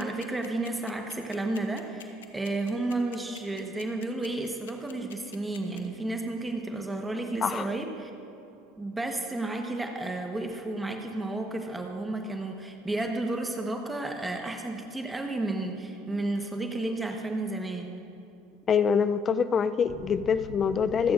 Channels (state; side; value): normal; both; correlation 0.73